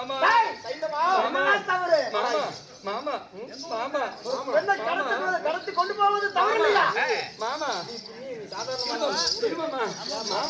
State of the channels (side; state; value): both; identical; correlation 1.00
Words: மாமா மாமா கடத்தி கொண்டு போவது தவறு இல்லையா? மாமா